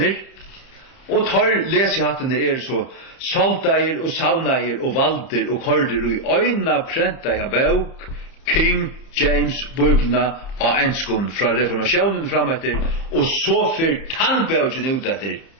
och tar läsjahattener så salta och sauna och valder och korder och i öjna pränta jag bok King James Bibelna och enskon från reformationen framåter och så för tannbögen ut efter.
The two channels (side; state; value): right; late; 30 ms